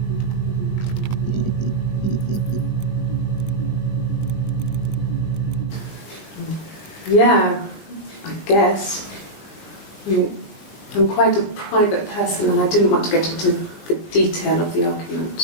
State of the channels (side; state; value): right; late; 20 ms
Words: Yeah, I guess. I mean, I'm quite a private person and I didn't want to get into the detail of the